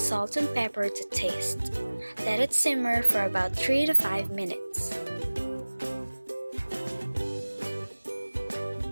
and pepper to taste. Let it simmer for about 3 to 5 minutes.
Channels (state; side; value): inverted; both; correlation -1.00